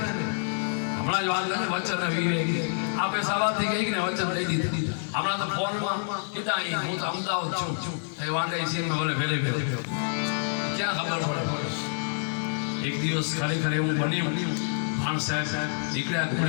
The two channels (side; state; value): right; silent; 60 dB below the other